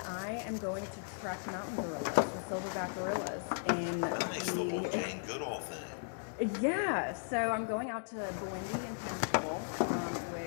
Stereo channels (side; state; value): right; silent; digital silence